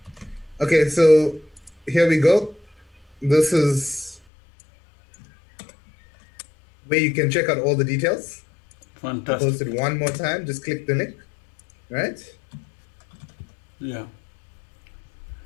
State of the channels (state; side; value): drops out; right; at 4.2 s